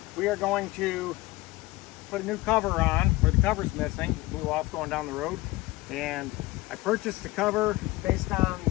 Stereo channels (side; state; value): right; quieter; 19.8 dB